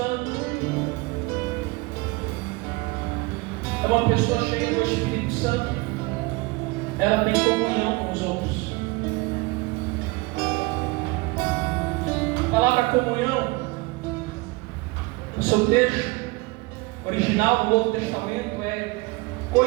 é uma pessoa cheia do Espírito Santo. Ela tem comunhão com os outros. A palavra comunhão, no seu texto original do Novo Testamento, é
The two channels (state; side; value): quieter; left; 24.2 dB